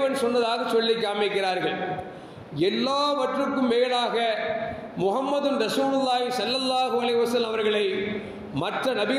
சொன்னதாக சொல்லி காமிக்கிறார்கள். எல்லாவற்றுக்கும் மேலாக முஹம்மது ரசூலுல்லாஹி ஸல்லல்லாஹு அலைஹி வஸல்லம் அவர்களை மற்ற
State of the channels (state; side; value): identical; both; correlation 1.00